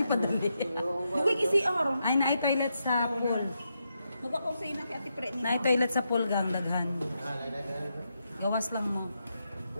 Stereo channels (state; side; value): inverted; both; correlation -0.83